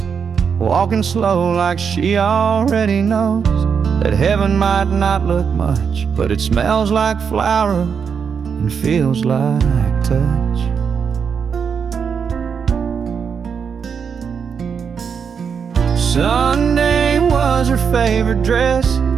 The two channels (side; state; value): left; quieter; 6.6 dB